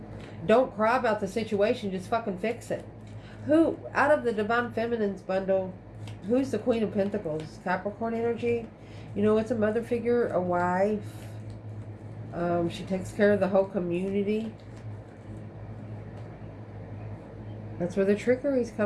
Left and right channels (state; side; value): identical; both; correlation 1.00